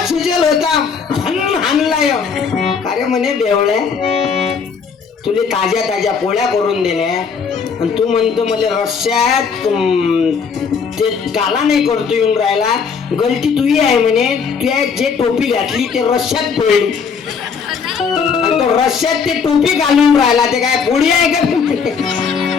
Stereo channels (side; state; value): right; quieter; 5.9 dB